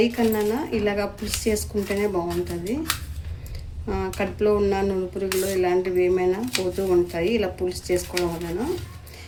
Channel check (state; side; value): identical; both; correlation 1.00